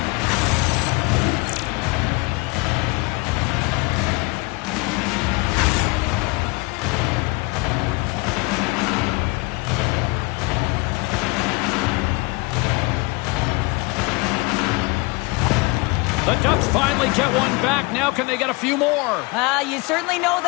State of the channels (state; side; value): quieter; right; 26.1 dB